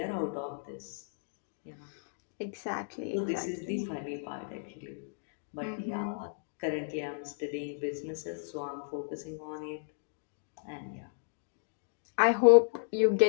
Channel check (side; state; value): right; silent; digital silence